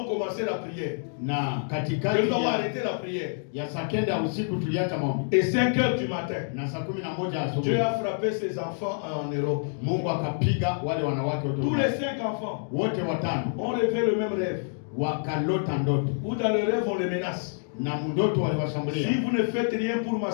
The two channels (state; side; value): silent; right; digital silence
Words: commencé la prière, que nous avons arrêté la prière, et 5h du matin, Dieu a frappé ses enfants en Europe. Tous les 5 enfants ont rêvé le même rêve. Ou dans le rêve on les menace. Si vous ne faites rien pour ma